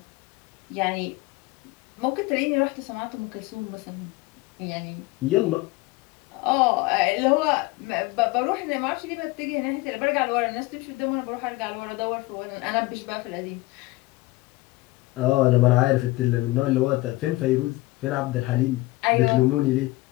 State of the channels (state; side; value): quieter; right; 20.7 dB